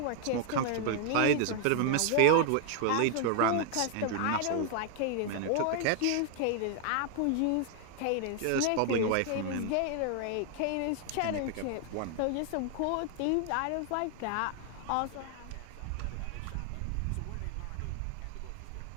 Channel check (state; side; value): different; both; correlation 0.00